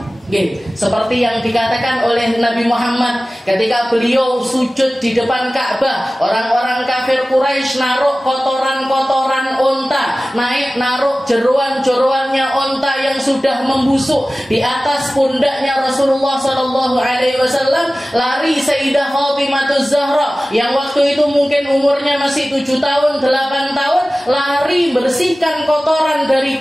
Seperti yang dikatakan oleh Nabi Muhammad ketika beliau sujud di depan Ka'bah, orang-orang kafir Quraisy naruh kotoran-kotoran onta, naruh jeruan-jeruannya onta yang sudah membusuk di atas pundaknya Rasulullah sallallahu alaihi wasallam. Lari Sayyidah Fatimah Zahra yang waktu itu mungkin umurnya masih 7 tahun, 8 tahun, lari bersihkan kotoran dari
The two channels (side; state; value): both; normal; correlation 0.97